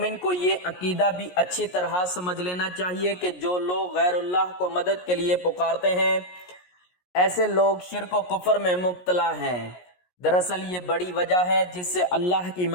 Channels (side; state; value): right; late; 17 ms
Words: کو یہ عقیدہ بھی اچھی طرح سمجھ لینا چاہیے کہ جو لوگ غیر اللہ کو مدد کے لیے پکارتے ہیں، ایسے لوگ شرک و کفر میں مبتلا ہیں۔ دراصل یہ بڑی وجہ ہے جس سے اللہ کی